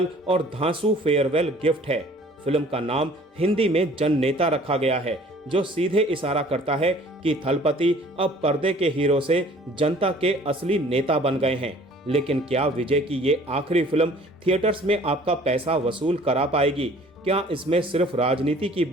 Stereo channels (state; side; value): normal; both; correlation 0.52